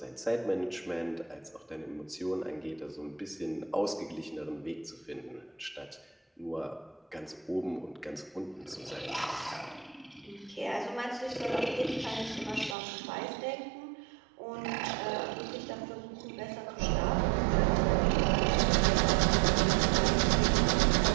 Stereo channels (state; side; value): drops out; left; at 12.8 s